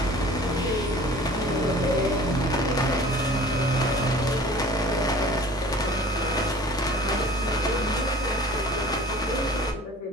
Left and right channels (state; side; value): normal; both; correlation 0.46